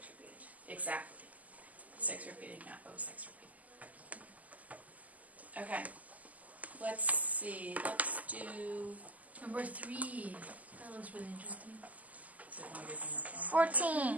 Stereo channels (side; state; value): left; late; 0.077 ms